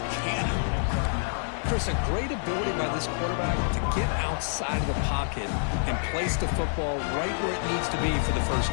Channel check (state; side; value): silent; right; digital silence